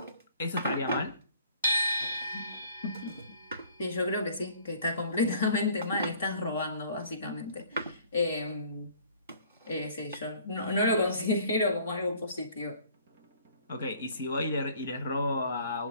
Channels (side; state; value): both; inverted; correlation -0.55